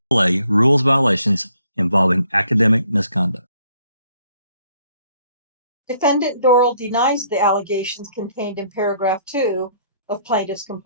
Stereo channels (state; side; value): inverted; both; correlation -0.65